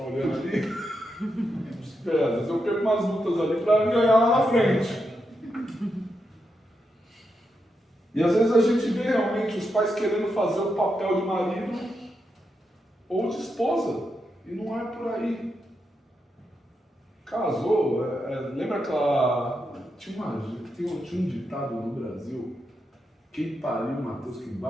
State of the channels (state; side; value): normal; both; correlation 0.85